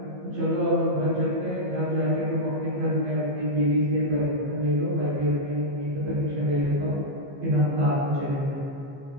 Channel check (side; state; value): left; late; 15 ms